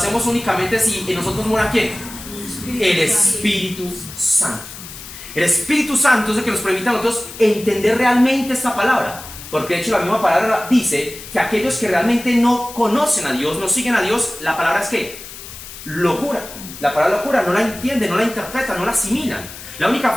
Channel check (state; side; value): noise; left; hiss, 14 dB below the sound